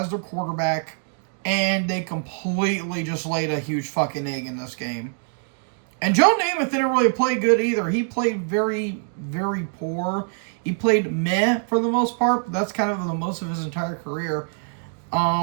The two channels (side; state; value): left; silent; 57 dB below the other